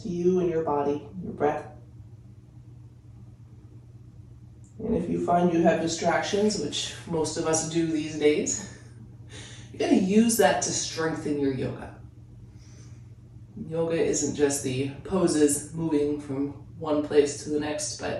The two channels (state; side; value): identical; both; correlation 1.00